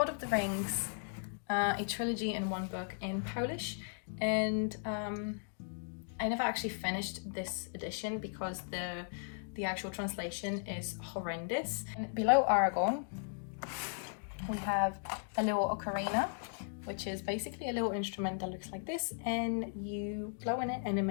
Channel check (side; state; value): right; silent; digital silence